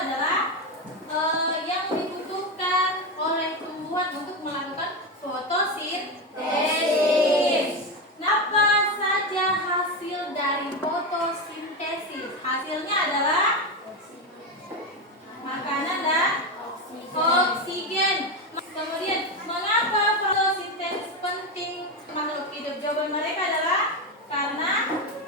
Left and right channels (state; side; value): normal; both; correlation 0.14